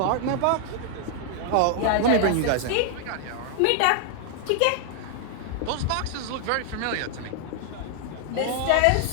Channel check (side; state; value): both; different; correlation 0.00